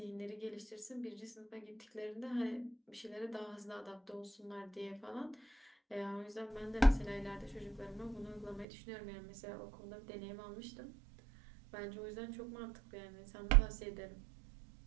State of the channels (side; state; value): left; drops out; at 8.7 s